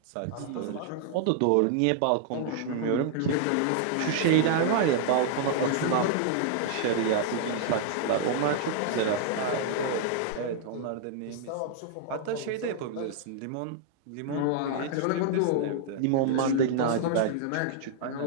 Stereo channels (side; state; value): both; different; correlation -0.01